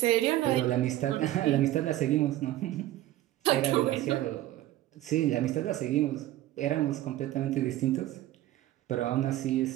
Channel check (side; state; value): left; quieter; 14.7 dB